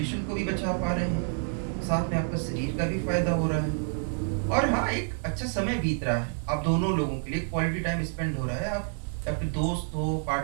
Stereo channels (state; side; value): silent; left; 59 dB below the other